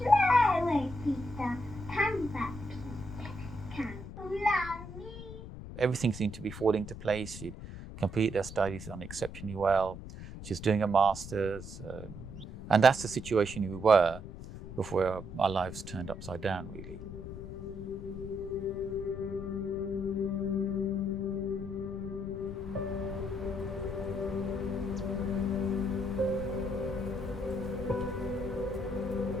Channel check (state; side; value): noise; left; rumble, 11 dB below the sound